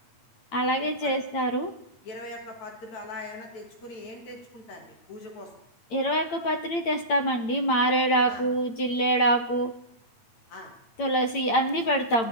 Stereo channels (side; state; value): right; late; 8.8 ms